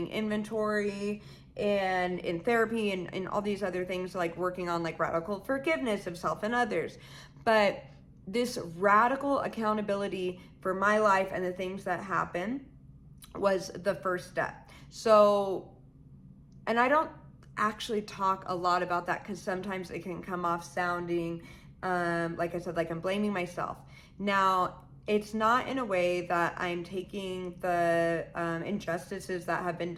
inventory, and in therapy, and all these other things, like working on like radical forgiveness of self and others. But this radical accountability for my life and the things that happen was the first step. So, and I don't actually talk a lot about that because sometimes it can come off sounding, like I said, like I'm blaming myself. Now, it's not in a way that I'm taking the injustices that have been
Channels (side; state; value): both; identical; correlation 1.00